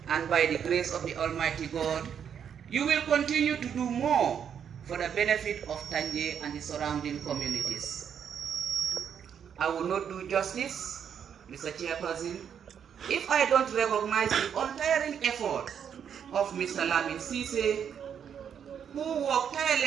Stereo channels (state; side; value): quieter; left; 8.1 dB